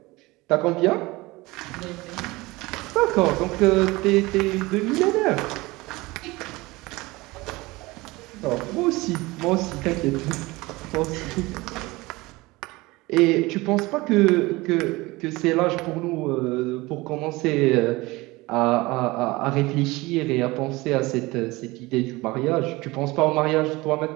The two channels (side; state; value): left; quieter; 21.6 dB